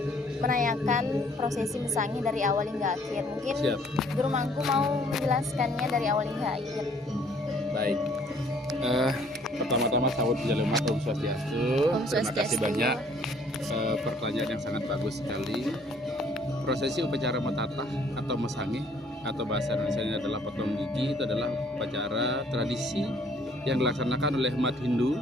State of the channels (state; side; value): normal; both; correlation 0.60